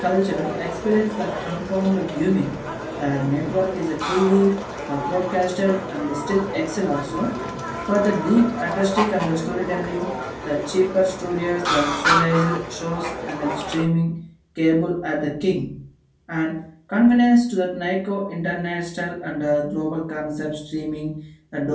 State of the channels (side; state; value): both; identical; correlation 1.00